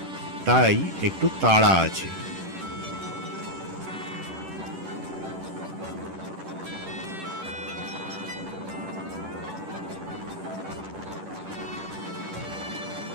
তাই একটু তাড়া আছে।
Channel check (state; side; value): late; left; 10 ms